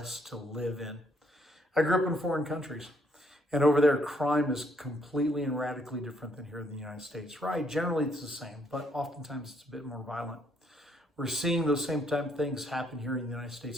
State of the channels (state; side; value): normal; both; correlation 0.70